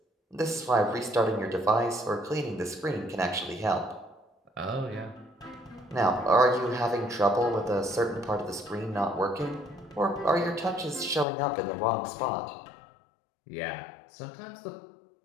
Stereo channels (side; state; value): right; drops out; at 11.2 s